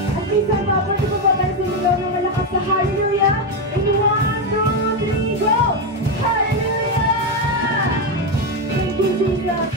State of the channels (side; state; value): both; normal; correlation 0.08